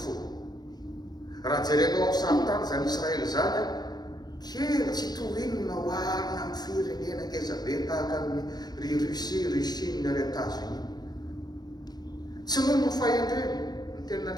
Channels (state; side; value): late; right; 0.19 ms